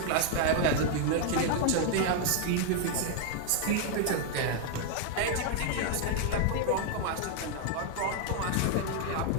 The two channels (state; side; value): different; both; correlation 0.00